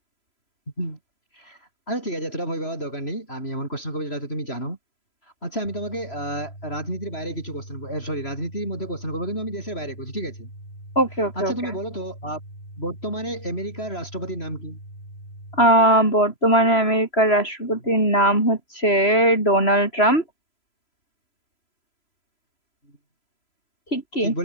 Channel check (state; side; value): late; right; 3.0 ms